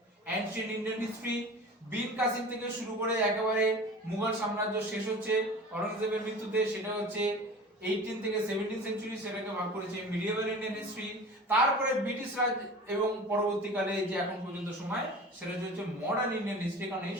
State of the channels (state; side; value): normal; both; correlation 0.37